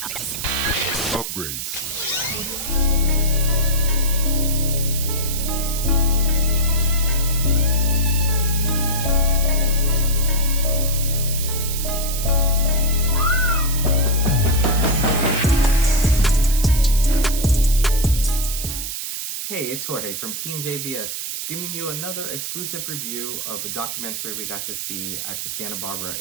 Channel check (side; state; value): right; noise; hiss, 5 dB below the sound